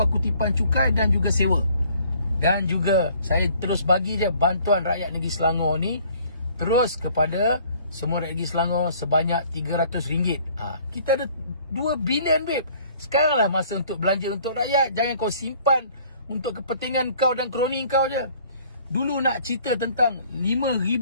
kutipan cukai dan juga sewa. Dan juga saya terus bagi je bantuan rakyat negeri Selangor ni terus kepada semua rakyat negeri Selangor sebanyak RM300. Kita ada 2 bilion babe. Sekaranglah masa untuk belanja untuk rakyat. Jangan kau simpan untuk kepentingan kau dan kroni kau je. Dulu nak cerita tentang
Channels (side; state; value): both; inverted; correlation -0.57